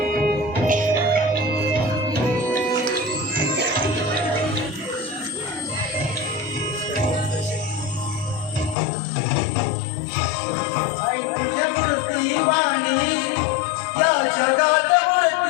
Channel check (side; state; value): right; drops out; at 8.8 s